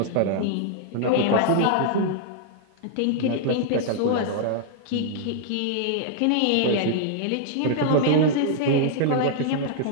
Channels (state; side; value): different; both; correlation -0.01